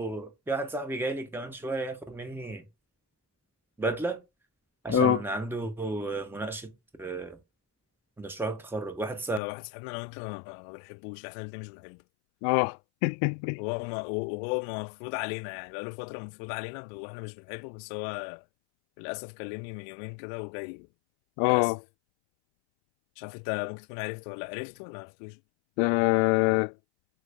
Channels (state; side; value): drops out; right; at 9.4 s